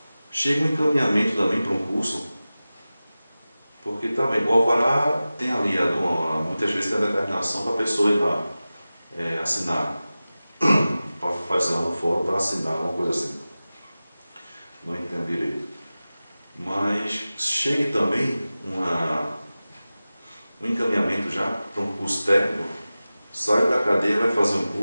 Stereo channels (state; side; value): inverted; both; correlation -0.96